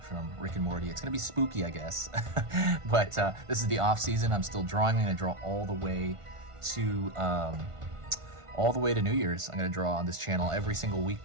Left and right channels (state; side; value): late; left; 1.5 ms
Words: from Rick and Morty. It's gonna be spooky, I guess. But this is the off season. I'm still drawing. I'm gonna draw all the way to New Year's. I'm gonna draw on this channel every single